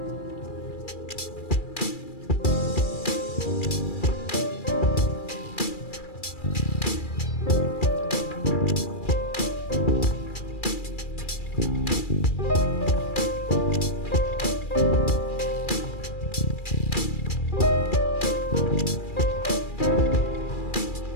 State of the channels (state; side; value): late; right; 2.4 ms